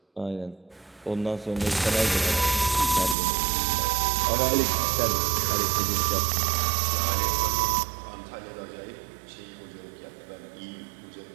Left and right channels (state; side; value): drops out; left; at 3.2 s